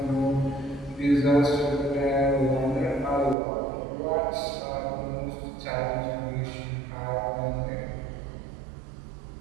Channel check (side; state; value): left; drops out; at 3.4 s